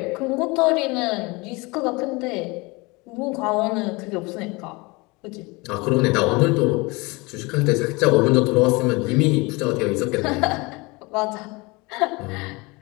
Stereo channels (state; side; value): quieter; right; 25.4 dB